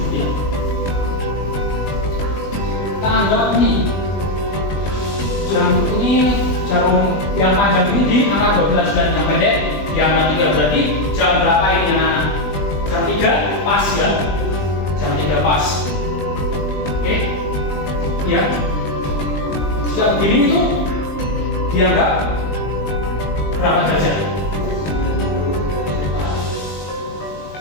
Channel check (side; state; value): right; late; 20 ms